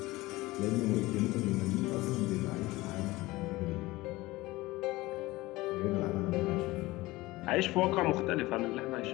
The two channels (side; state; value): right; quieter; 19.8 dB